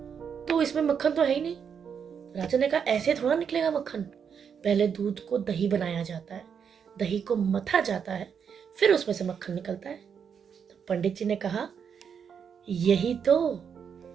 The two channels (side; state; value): left; quieter; 7.2 dB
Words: तो इसमें मक्खन तो है ही नहीं। राजा ने कहा, ऐसे थोड़ा निकलेगा मक्खन। पहले दूध को दही बनाया जाता है, दही को मथा जाता है, फिर उसमें से मक्खन निकलता है। तो पंडित जी ने कहा, यही तो,